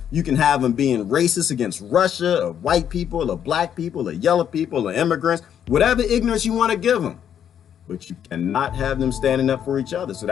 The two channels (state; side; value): quieter; right; 9.1 dB